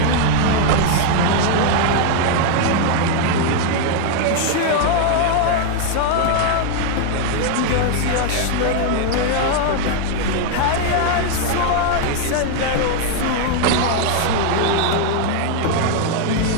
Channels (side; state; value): both; different; correlation 0.00